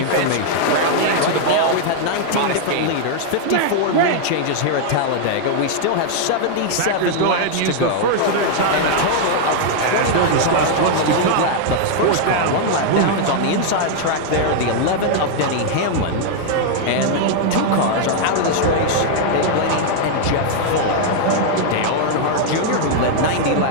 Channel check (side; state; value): both; different; correlation 0.00